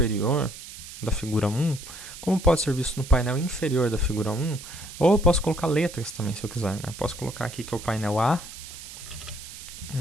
da figura 1, como pode ser visto no painel inferior da figura 1, ou eu posso colocar letras também, se eu quiser. Né? Eu posso colocar aqui que é o painel A,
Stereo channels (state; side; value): noise; right; hiss, 13 dB below the sound